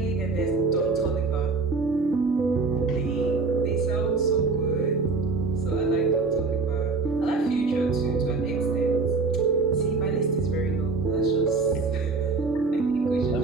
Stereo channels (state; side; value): quieter; left; 4.1 dB